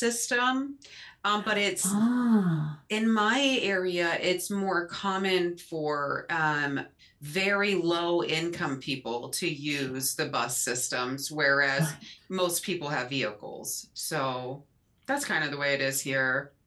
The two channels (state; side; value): identical; both; correlation 1.00